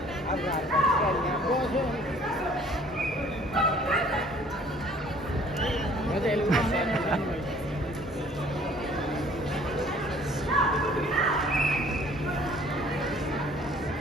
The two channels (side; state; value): both; normal; correlation 0.55